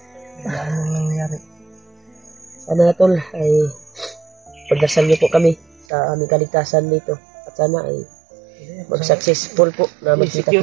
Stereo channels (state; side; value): drops out; left; at 5.9 s